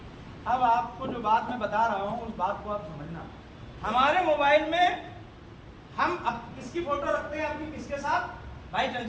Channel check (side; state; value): both; identical; correlation 1.00